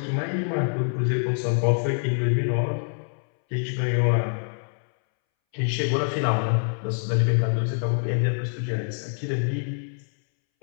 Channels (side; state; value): right; silent; 62 dB below the other